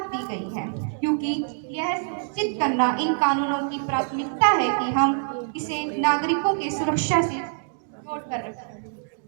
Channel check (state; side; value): silent; left; digital silence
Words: दी गई है, क्योंकि यह सुनिश्चित करना इन कानूनों की प्राथमिकता है कि हम इसे नागरिकों के सुरक्षा से जोड़ कर रखें।